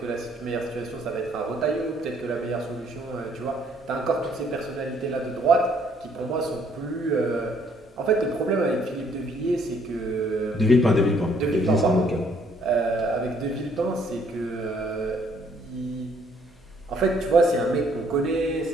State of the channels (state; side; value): noise; right; hum, 29 dB below the sound